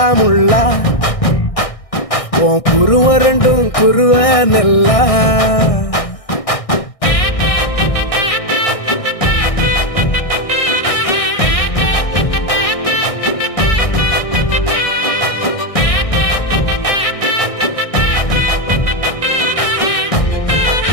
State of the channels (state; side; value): late; right; 1.6 ms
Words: உன் குருவ ரெண்டும் குருவ நெல்லா